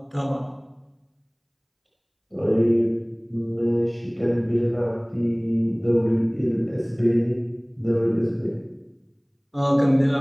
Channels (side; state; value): both; identical; correlation 1.00